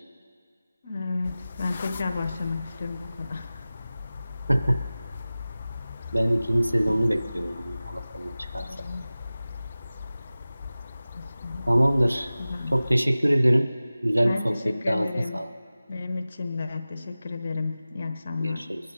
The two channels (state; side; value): inverted; both; correlation -0.96